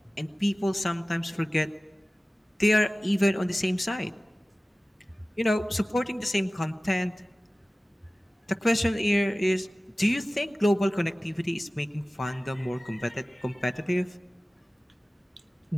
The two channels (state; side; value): normal; both; correlation 0.97